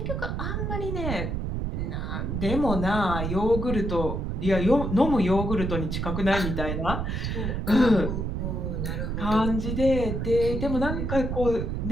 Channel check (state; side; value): noise; right; rumble, 2 dB below the sound